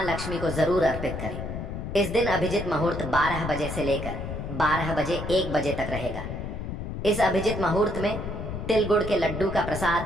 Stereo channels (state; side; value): noise; left; rumble, 6 dB below the sound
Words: लक्ष्मी को जरूर अर्पित करें। इस दिन अभिजित मुहूर्त 12 बजे से लेकर 12 बजे 1 बजे तक रहेगा। इस अभिजित मुहूर्त में तिल गुड़ के लड्डू का